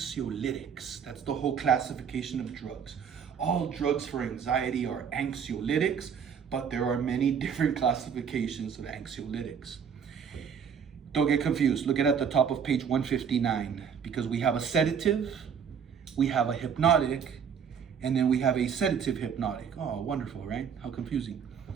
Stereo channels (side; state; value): left; quieter; 7.2 dB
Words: That's the whole classification of drugs. All drugs for anxiety are anxiolytics, but there are many different classifications of anxiolytics. Don't get confused. Look at the top of page 159, because we have a sedative, we have a hypnotic, and then we have a sedative hypnotic. Oh, wonderful, right? How confusing.